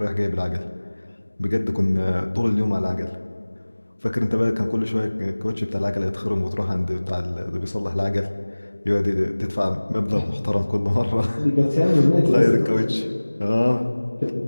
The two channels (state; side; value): inverted; both; correlation -1.00